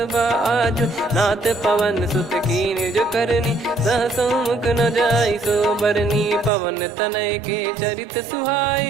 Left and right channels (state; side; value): drops out; left; at 6.5 s